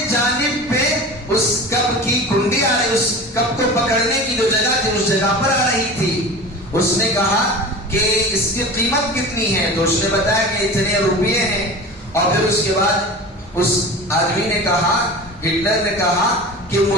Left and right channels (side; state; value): both; normal; correlation 0.34